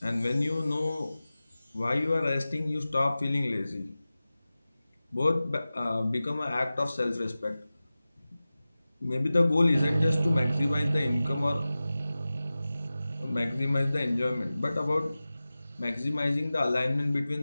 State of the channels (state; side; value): inverted; both; correlation -0.96